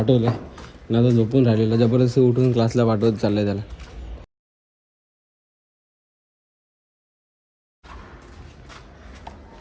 ना, आता झोपून राहिलेलं. जबरदस्ती उठून क्लासला पाठवत चाललंय त्याला.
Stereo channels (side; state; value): both; identical; correlation 1.00